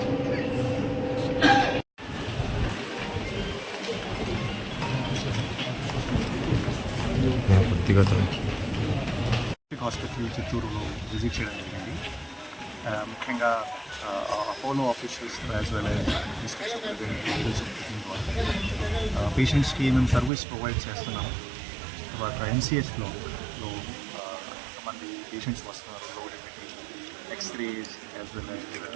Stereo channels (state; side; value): drops out; left; at 20.3 s